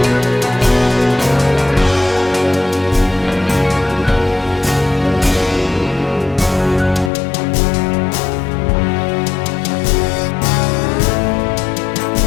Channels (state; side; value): drops out; right; at 7.1 s